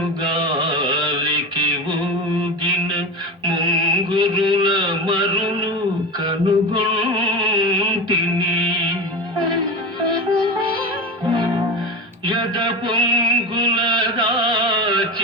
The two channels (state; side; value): normal; both; correlation 0.26